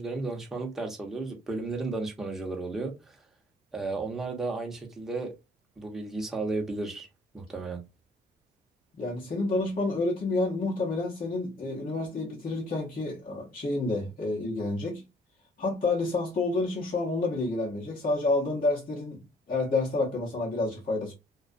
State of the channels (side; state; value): both; normal; correlation 0.60